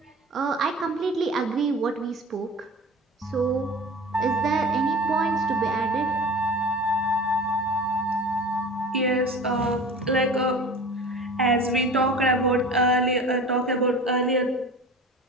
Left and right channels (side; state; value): both; normal; correlation 0.37